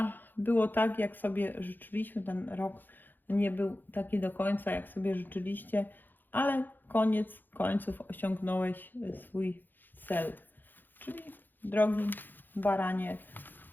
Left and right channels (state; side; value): late; right; 0.089 ms